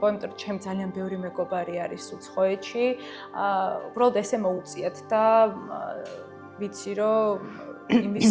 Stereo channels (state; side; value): identical; both; correlation 1.00